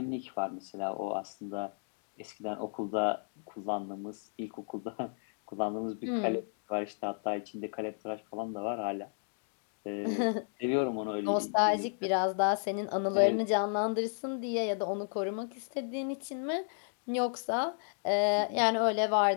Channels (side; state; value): right; silent; digital silence